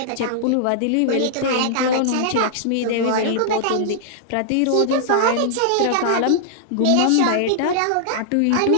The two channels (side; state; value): both; different; correlation -0.01